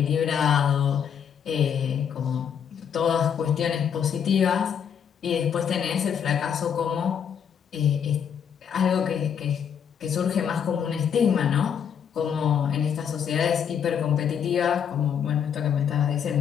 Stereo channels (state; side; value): quieter; right; 7.9 dB